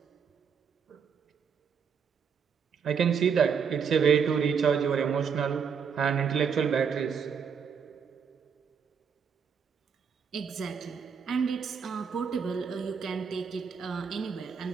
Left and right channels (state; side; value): quieter; left; 6.6 dB